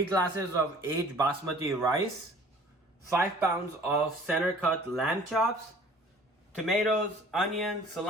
glasses of aged basmati rice, 5 pounds of center cut lamb chops, tomatoes, onions,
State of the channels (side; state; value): both; normal; correlation 0.50